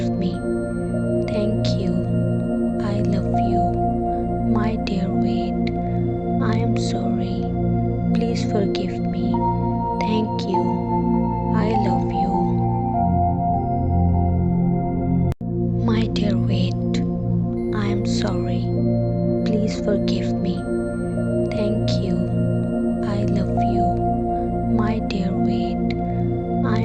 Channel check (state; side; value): identical; both; correlation 1.00